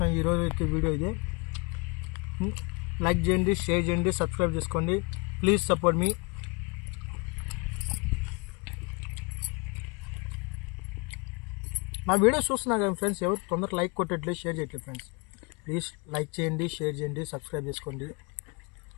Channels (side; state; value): right; quieter; 30.5 dB